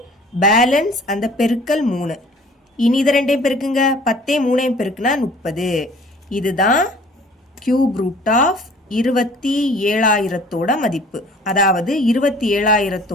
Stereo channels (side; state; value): both; normal; correlation 0.51